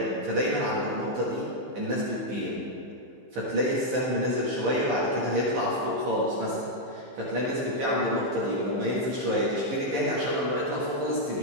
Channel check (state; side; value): late; left; 15 ms